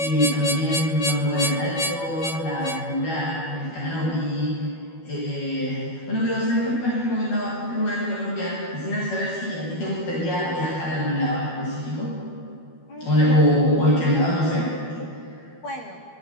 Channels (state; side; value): late; right; 12 ms